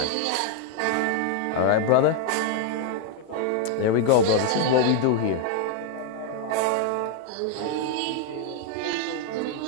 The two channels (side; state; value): both; different; correlation 0.00